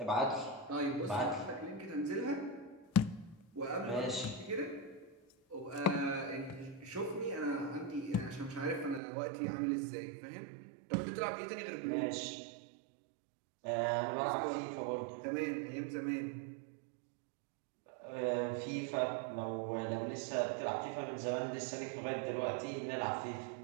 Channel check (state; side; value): drops out; left; at 9.0 s